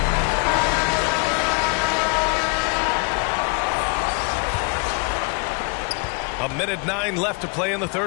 A minute 9 left to play in the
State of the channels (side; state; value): right; quieter; 33.6 dB